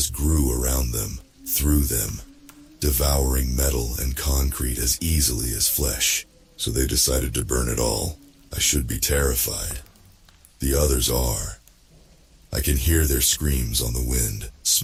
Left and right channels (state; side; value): identical; both; correlation 1.00